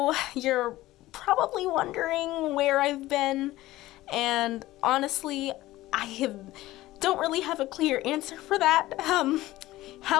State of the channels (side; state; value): right; quieter; 16.9 dB